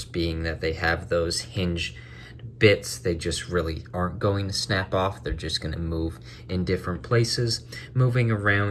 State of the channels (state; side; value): identical; both; correlation 1.00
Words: being that they have those hinged bits, they just really aren't going to snap off. They're just going to move in different places. Moving